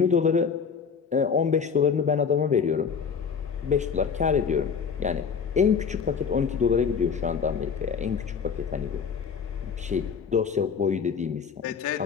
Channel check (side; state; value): right; quieter; 6.3 dB